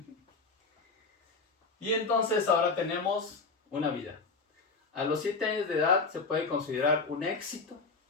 Y entonces ahora tenemos una vida. A los 7 años de edad se puede considerar un éxito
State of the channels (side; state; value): right; quieter; 4.2 dB